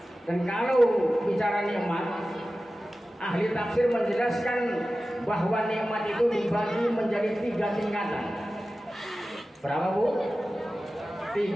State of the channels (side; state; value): both; normal; correlation 0.95